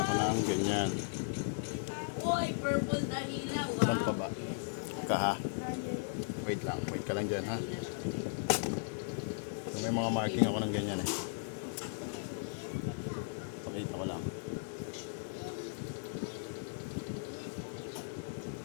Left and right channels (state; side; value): silent; right; digital silence